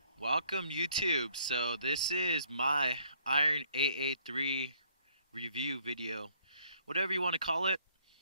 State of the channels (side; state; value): both; inverted; correlation -0.63